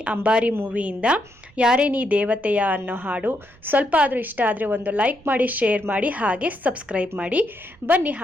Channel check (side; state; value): right; noise; rumble, 27 dB below the sound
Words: ಅಂಬಾರಿ ಮೂವಿಯಿಂದ ಯಾರೇ ನೀ ದೇವತೆಯ ಅನ್ನೋ ಹಾಡು. ಸ್ವಲ್ಪ ಆದರೂ ಇಷ್ಟ ಆದರೆ ಒಂದು ಲೈಕ್ ಮಾಡಿ, ಶೇರ್ ಮಾಡಿ, ಹಾಗೆ ಸಬ್ಸ್ಕ್ರೈಬ್ ಮಾಡಿ. ಬನ್ನಿ